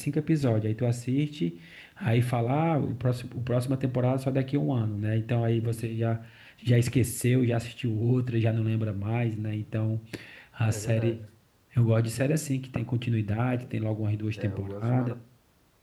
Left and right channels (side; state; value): both; identical; correlation 1.00